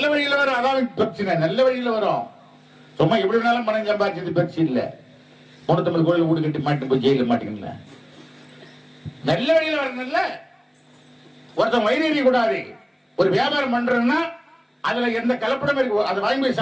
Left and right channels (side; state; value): both; identical; correlation 1.00